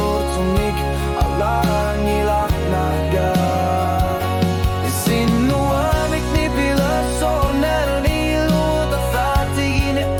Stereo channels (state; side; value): identical; both; correlation 1.00